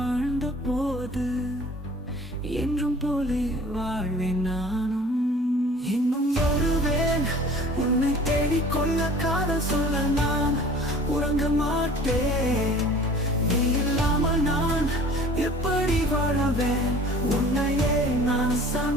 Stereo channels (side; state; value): both; normal; correlation 0.47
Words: போது என்றும் போலே வாழ்வேன் நானும். இன்னும் வருவேன் உன்னை தேடிக்கொள்ள, காதல் சொல்ல நான் உறங்க மாட்டேன். நீ இல்லாமல் நான் எப்படி வாழவேன்? உன்னையே நான்